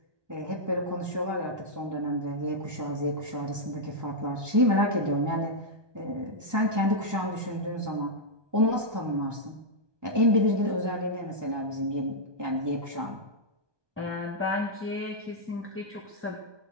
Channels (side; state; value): left; late; 1.2 ms